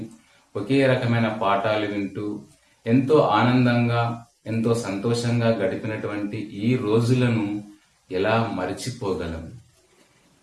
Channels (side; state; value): both; identical; correlation 1.00